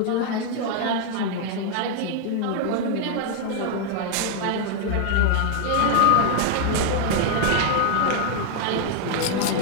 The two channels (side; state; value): both; different; correlation 0.00